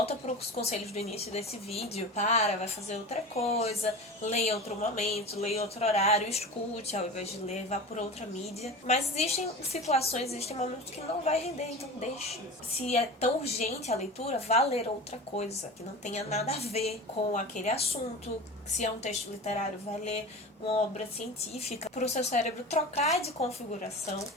para os conselhos do início desse vídeo. Vai fazer outra coisa, leia outro momento, leia outro horário, escute ao invés de ler, vá por outra mídia. Mas existem situações, existem momentos que não vai render, então deixe. Se é tão urgente a leitura, vá ler outra coisa, que não tenha nada a ver com aquele assunto. Se é um texto literário, vai ler uma obra científica para o seu cérebro trocar de configuração.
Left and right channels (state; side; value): normal; both; correlation 0.31